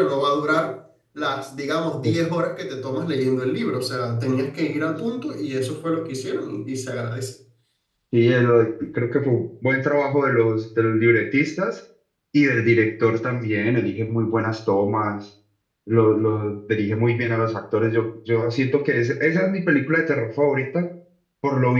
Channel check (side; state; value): both; identical; correlation 1.00